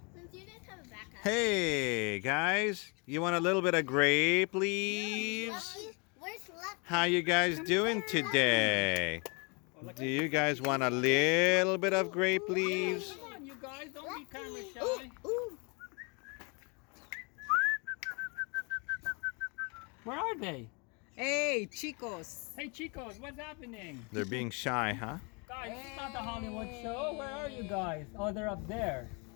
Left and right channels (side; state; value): right; quieter; 32.5 dB